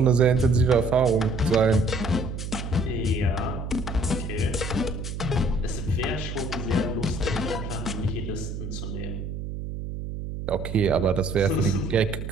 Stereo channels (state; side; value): noise; right; hum, 6 dB below the sound